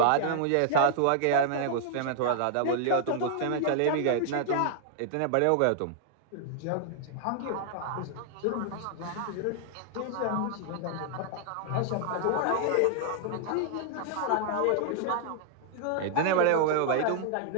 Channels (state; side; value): different; both; correlation -0.01